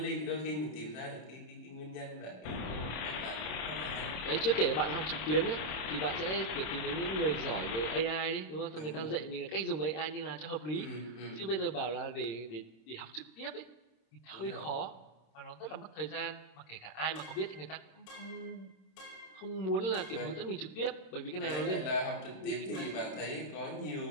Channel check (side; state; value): right; late; 26 ms